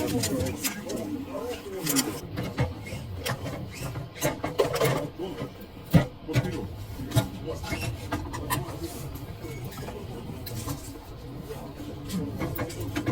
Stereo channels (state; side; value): identical; both; correlation 1.00